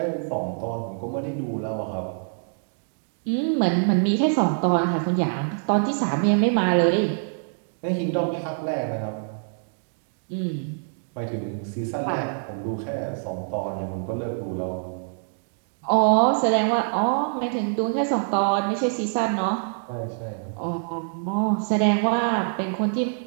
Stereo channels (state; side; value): silent; left; 62 dB below the other